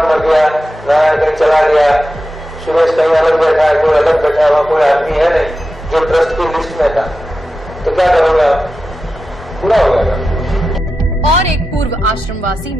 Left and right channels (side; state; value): both; normal; correlation 0.91